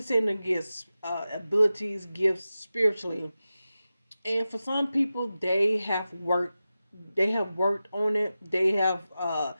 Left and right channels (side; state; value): both; inverted; correlation -0.94